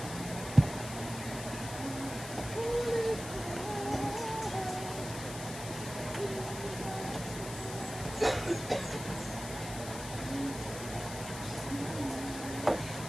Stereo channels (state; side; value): noise; left; hiss, 10 dB below the sound